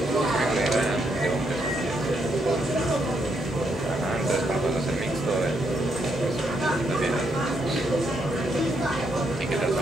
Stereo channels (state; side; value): normal; both; correlation 0.77